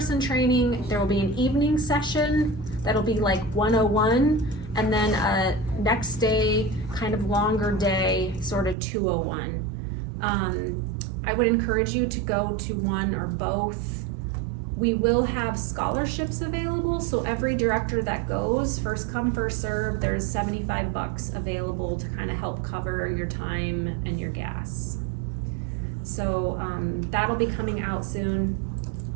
training, there will be an evening session that'll be like 101, and then a next day, kind of longer day, sort of 201. I would encourage you to go to one or both. We will have scholarships available, so every director that goes, first come, first serve, there's $75 available to kind of help cover your time and your gas. So that'll be coming out soon.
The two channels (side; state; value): left; drops out; at 8.8 s